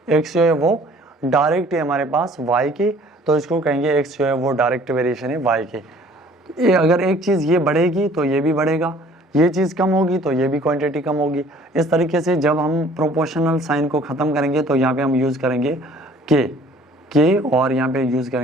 x जो है वो डायरेक्ट है हमारे पास y के, तो इसको कहेंगे x जो है वो डायरेक्ट वेरिएशन है y के। अगर एक चीज़ ये बढ़ेगी तो ये भी बढ़ेगा, ये चीज़ कम होगी तो ये भी क्वांटिटी कम होगी। इस तरीके से जब हम प्रोपोर्शनल साइन को ख़त्म करेंगे तो यहाँ पे हम यूज़ करेंगे k और यहाँ पे यूज़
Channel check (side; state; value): both; normal; correlation 0.54